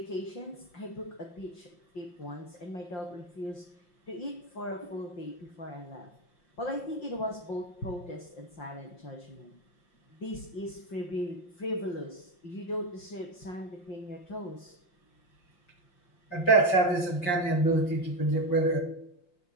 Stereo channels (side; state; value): right; late; 5.7 ms